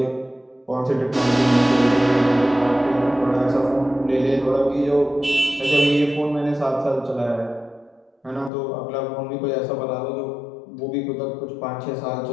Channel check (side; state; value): right; drops out; at 8.5 s